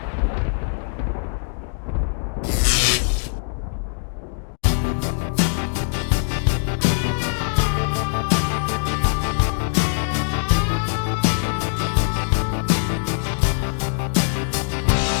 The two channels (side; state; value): right; silent; digital silence